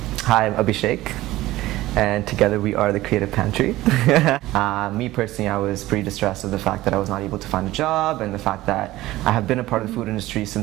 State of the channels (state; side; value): quieter; left; 16.9 dB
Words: Hi, I'm Abhishek, and together we are the Creative Pantry. Me personally, I was pretty distressed of the fact that I was not able to find a job, and the fact that I have been a part of the food industry